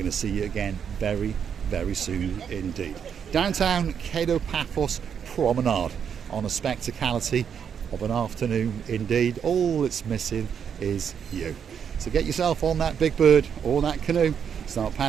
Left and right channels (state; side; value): quieter; left; 7.6 dB